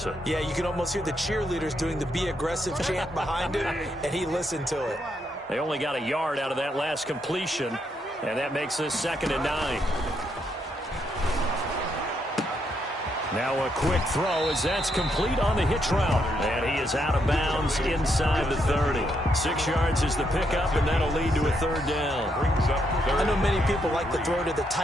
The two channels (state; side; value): normal; both; correlation 0.77